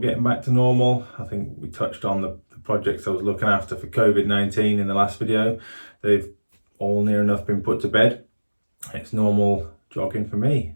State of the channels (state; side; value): inverted; both; correlation -1.00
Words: getting back to normal. I think we touched on the projects I was looking after for COVID-19 in the last video. They've all near enough been put to bed. It's normal jogging for me.